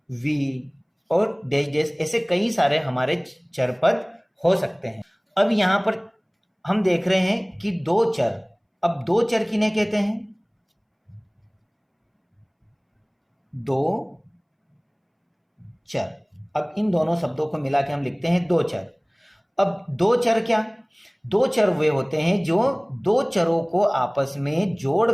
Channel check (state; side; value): identical; both; correlation 1.00